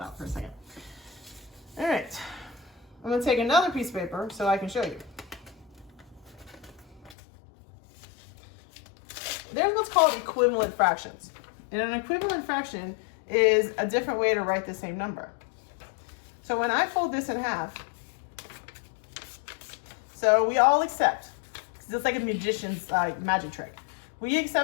out for a second. All right, I'm gonna take another piece of paper so I can show you. There's what's called equivalent fractions. And an equivalent fraction is a different way to write the same number. So when I fold this in half, so we all accept, because it's like a magician's magic trick. We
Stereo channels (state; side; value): drops out; right; at 7.2 s